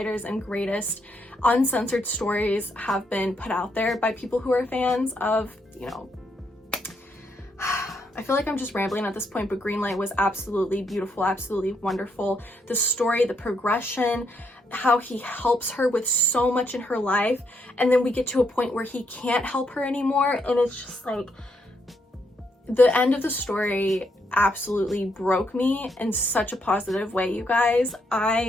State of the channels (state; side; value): normal; both; correlation 0.76